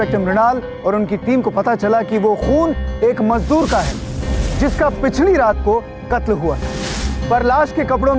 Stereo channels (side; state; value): both; identical; correlation 1.00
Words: मृणाल और उनकी टीम को पता चला कि वो खून एक मजदूर का है जिसका पिछली रात को कत्ल हुआ था। पर लाश के कपड़ों